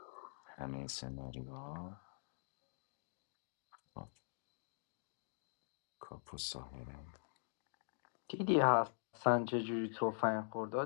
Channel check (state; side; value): silent; right; digital silence